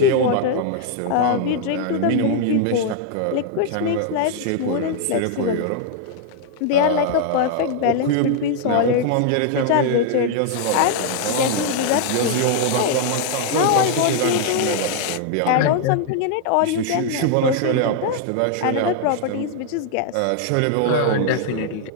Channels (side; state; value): both; different; correlation 0.00